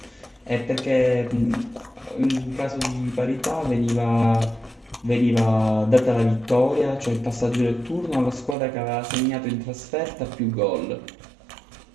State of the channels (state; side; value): drops out; left; at 8.6 s